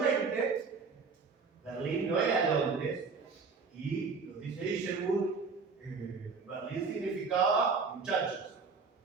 Berlín no era Londres, y lo dice Isherwood, Berlín significaba muchachos.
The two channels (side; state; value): left; quieter; 4.8 dB